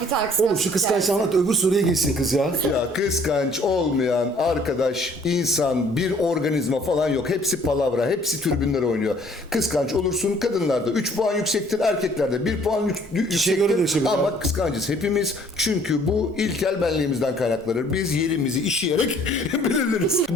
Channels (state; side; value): normal; both; correlation 0.58